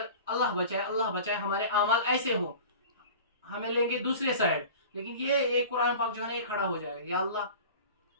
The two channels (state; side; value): inverted; both; correlation -0.39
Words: اللہ بچائے ہمارے اعمال ایسے ہوں، ہمیں لیں گے دوسرے سائڈ، لیکن یہ قرآن پاک جو ہے نا یہ کھڑا ہو جائے گا، یا